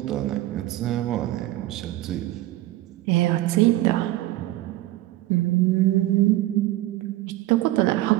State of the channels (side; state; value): left; quieter; 16.4 dB